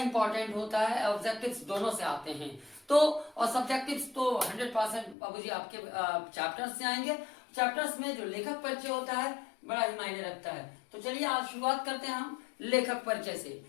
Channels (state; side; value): drops out; right; at 5.2 s